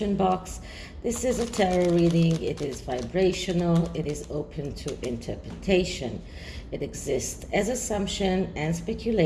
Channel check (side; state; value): both; identical; correlation 1.00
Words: box. This is a tarot reading. It is vibrational. It is open to interpretation. It exists as assumption and